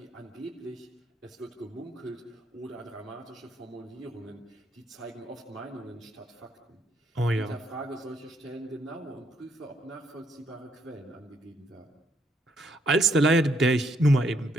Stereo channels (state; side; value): normal; both; correlation 0.72